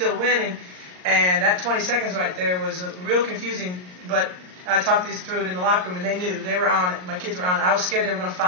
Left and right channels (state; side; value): late; left; 39 ms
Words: winning, and that 20 seconds right there was real confusing. But I talked this through it in the locker room, and they knew they were on it. My kids were on it. I was scared they were going to